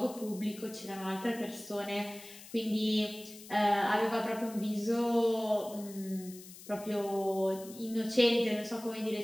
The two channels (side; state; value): left; noise; hiss, 17 dB below the sound